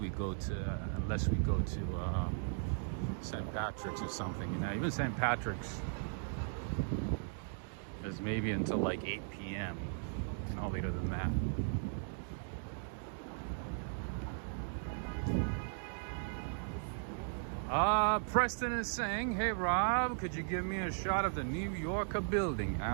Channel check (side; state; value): left; silent; digital silence